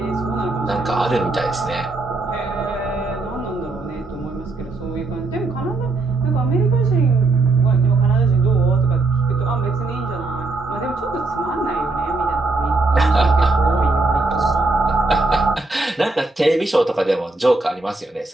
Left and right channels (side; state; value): left; quieter; 3.3 dB